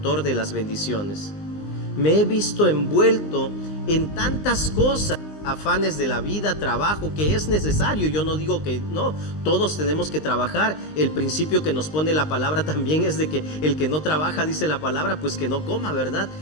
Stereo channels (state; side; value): late; right; 19 ms